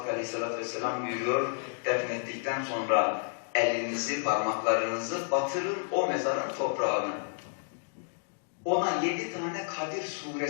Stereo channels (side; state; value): right; silent; digital silence